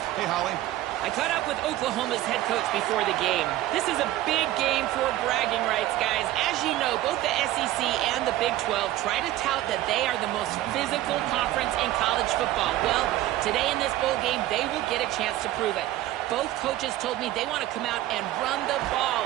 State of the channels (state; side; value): quieter; left; 15.0 dB